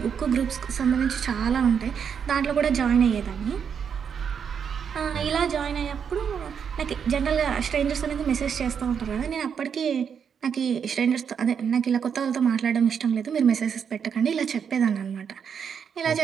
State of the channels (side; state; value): left; quieter; 7.2 dB